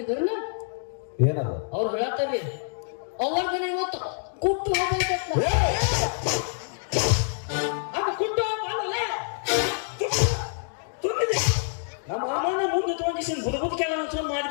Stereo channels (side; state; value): right; silent; digital silence